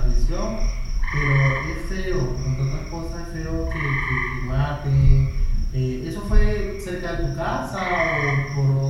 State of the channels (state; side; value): identical; both; correlation 1.00